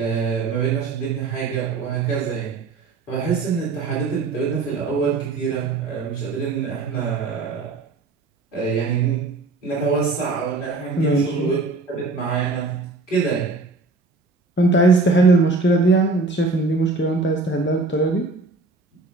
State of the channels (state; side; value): quieter; left; 3.6 dB